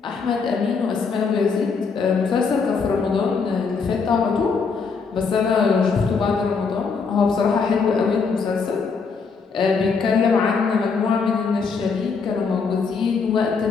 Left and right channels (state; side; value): quieter; right; 5.2 dB